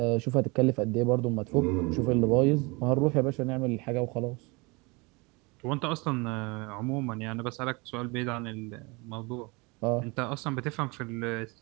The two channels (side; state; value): left; quieter; 27.0 dB